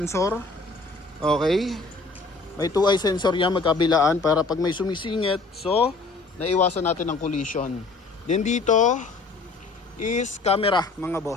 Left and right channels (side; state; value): right; quieter; 3.7 dB